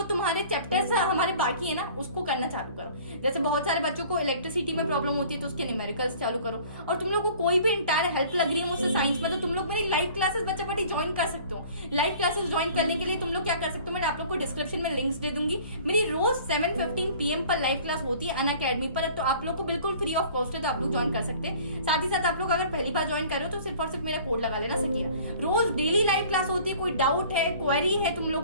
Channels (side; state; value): both; inverted; correlation -0.49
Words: तुम्हारे चैप्टर्स हमारे बाकी है ना उसको करना चालू करो। जैसे बहुत सारे बच्चों को इलेक्ट्रिसिटी में प्रॉब्लम होती है तो उसके न्यूमेरिकल्स चालू करो। और तुम लोग को कोई भी इंटायर हेल्प लग रही है मुझसे साइंस में, तो तुम लोग मेरी लाइव क्लासेस बच्चा पार्टी ज्वाइन कर सकते हो। लाइव क्लासेस ज्वाइन करने के लिए तुम लोग क्या कर सकते हो, मैं आप लोग को डिस्क्रिप्शन में लिंक्स दे दूंगी। मेरी रोज 7:15 PM पर लाइव क्लास होती है अनअकैडमी पर, तो आप लोग को बिल्कुल फ्री ऑफ कॉस्ट है, तो आप लोग ज्वाइन कर सकते हैं। साथ ही साथ आप लोग अगर पहली बार ज्वाइन कर रहे हो तो सिर्फ और सिर्फ मेरा कोड लगा लेना सकिया। रोज डेली लाइव क्लास होती है, कोई डाउट है, क्वेरी है तुम